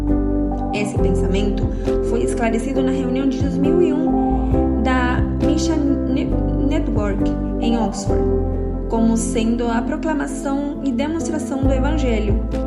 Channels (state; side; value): identical; both; correlation 1.00